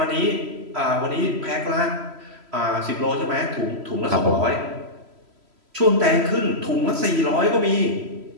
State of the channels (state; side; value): late; left; 3.0 ms